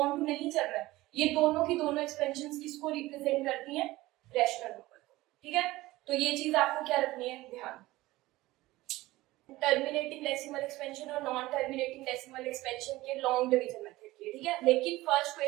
टू नहीं चल रहा है, ये दोनों की दोनों एक्सपेंशंस किसको रिप्रेजेंट करती हैं, रैशनल नंबर को, ठीक है। तो ये चीज आपको क्या रखनी है, ध्यान। टर्मिनेटिंग डेसिमल एक्सपेंशन और नॉन टर्मिनेटिंग डेसिमल एक्सपेंशन के लॉन्ग डिवीजन मेथड की, ठीक है। लेकिन फर्स्ट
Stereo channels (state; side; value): quieter; left; 18.4 dB